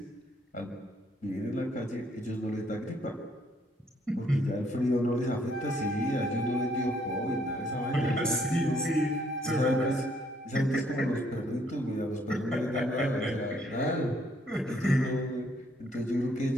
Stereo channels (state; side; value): normal; both; correlation 0.68